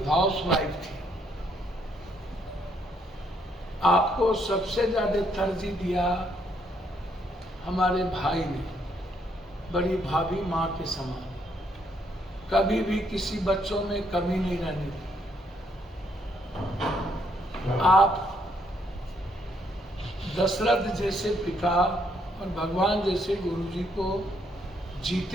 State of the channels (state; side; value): normal; both; correlation 0.72